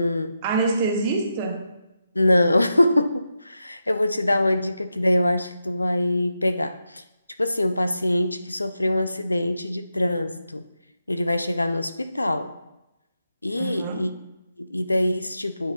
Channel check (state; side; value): inverted; both; correlation -0.88